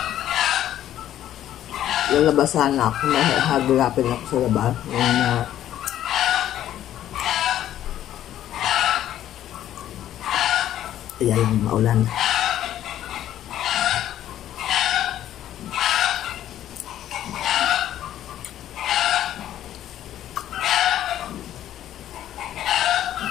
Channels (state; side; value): quieter; right; 11.9 dB